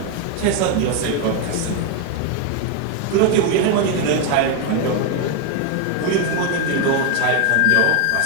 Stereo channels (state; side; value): different; both; correlation 0.01